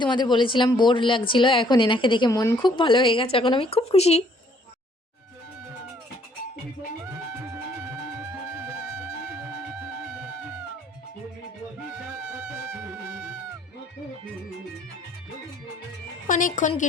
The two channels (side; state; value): both; normal; correlation 0.63